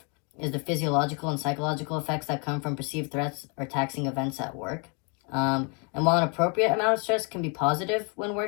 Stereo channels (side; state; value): right; quieter; 35.0 dB